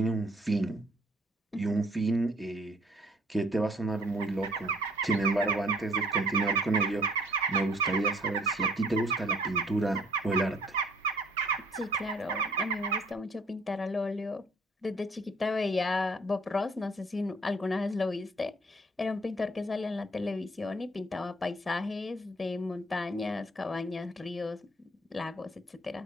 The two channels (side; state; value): both; normal; correlation 0.58